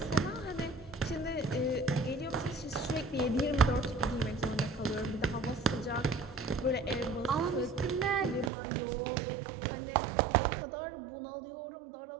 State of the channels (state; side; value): drops out; left; at 8.5 s